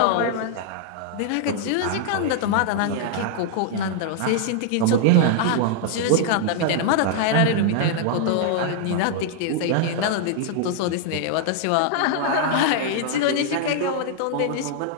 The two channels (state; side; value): different; both; correlation -0.01